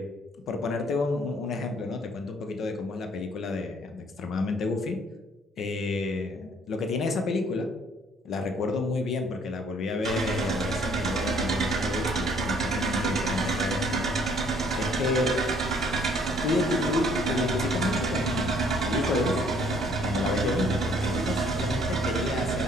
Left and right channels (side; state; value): both; normal; correlation 0.61